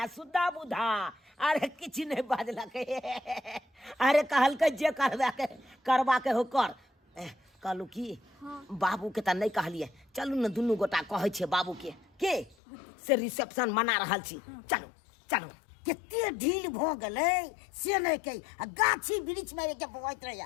सुधा बुधा अरे किछ नहीं बाजलक अरे कहल के जे करवा के हो कर कहलू की बाबू के त नहीं कहलिए चलू न दुनू गोटा कहै छे बाबू के से रिसेप्शन मना रहल छी चलो चलो केते ढील भ गेलै से नहीं कही आ गाछी वृक्ष में के बवैत रहिया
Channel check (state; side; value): drops out; right; at 12.6 s